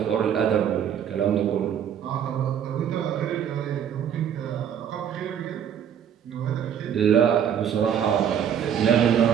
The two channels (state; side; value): quieter; left; 8.9 dB